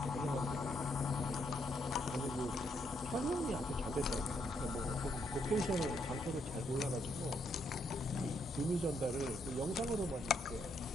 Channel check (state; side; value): normal; both; correlation 0.75